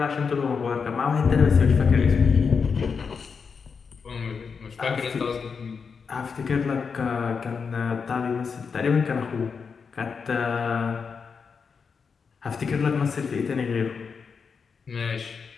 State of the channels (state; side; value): quieter; right; 5.7 dB